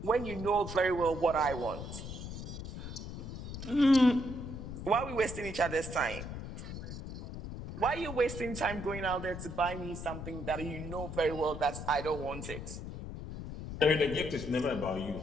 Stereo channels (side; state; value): left; noise; rumble, 8 dB below the sound